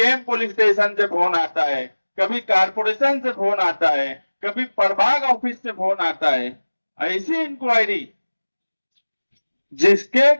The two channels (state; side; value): inverted; both; correlation -1.00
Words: पुलिस स्टेशन से फोन आता है, कभी कारपोरेशन से फोन आता है, कभी प्रभाग ऑफिस से फोन आता है। ऐसी इंक्वायरी जिसके